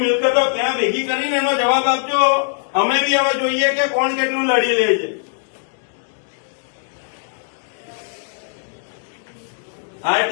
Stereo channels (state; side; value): silent; right; digital silence